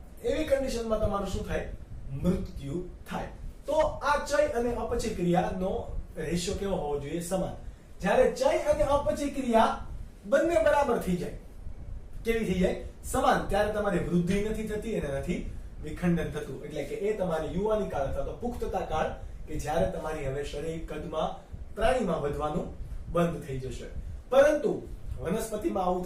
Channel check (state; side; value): identical; both; correlation 1.00